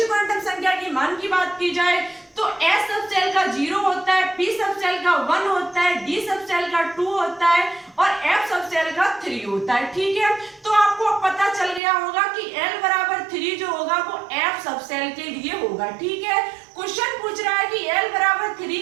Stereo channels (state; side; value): drops out; left; at 11.8 s